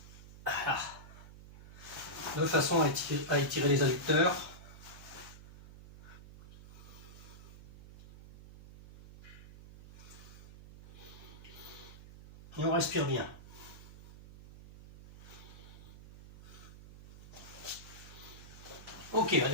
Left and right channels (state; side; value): noise; right; hum, 17 dB below the sound